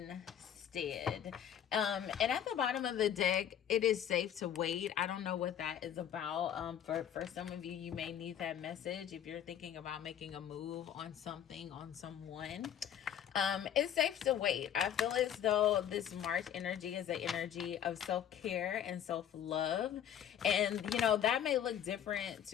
And at the bottom of the deck, it is safe to wait. I don't know what that is about. For some of you, you may need that message if you're thinking about making a move on something, on someone. It's safe to wait. I feel as though this March energy is an energy of self-care and self-love. And, you know, that may look different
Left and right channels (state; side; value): quieter; right; 9.7 dB